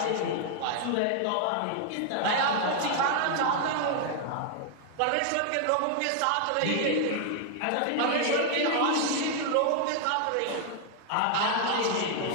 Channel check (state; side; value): different; both; correlation 0.00